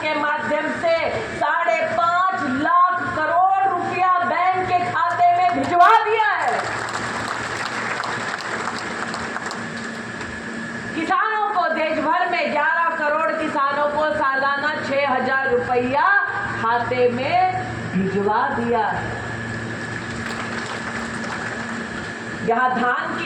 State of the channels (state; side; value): identical; both; correlation 1.00